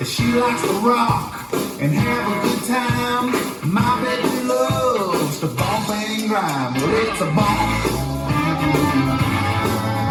She likes to rock and have a good time. My baby loves to bump and grind. Well, it's a bump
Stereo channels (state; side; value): identical; both; correlation 1.00